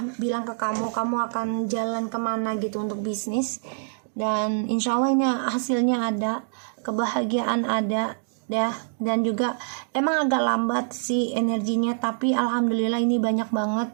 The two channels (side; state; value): left; silent; digital silence